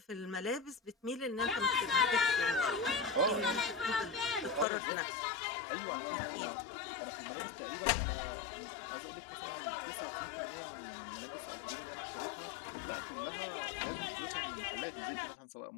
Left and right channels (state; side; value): drops out; right; at 4.7 s